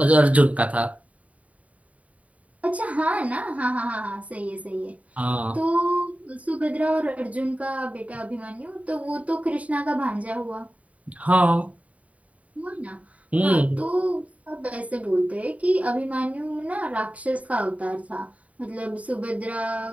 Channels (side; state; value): left; late; 0.068 ms